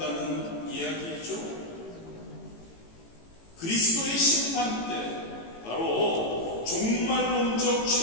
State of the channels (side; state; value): right; late; 18 ms